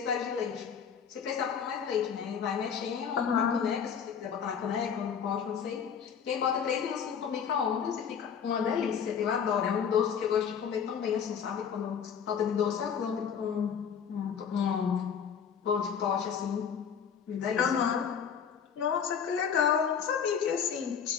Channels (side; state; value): right; quieter; 7.4 dB